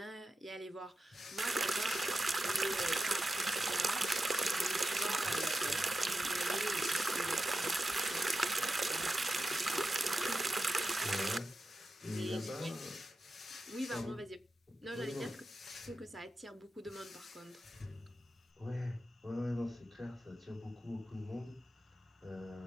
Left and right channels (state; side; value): normal; both; correlation 0.91